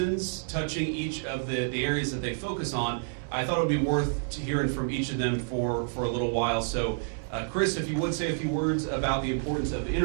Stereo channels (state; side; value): silent; left; 59 dB below the other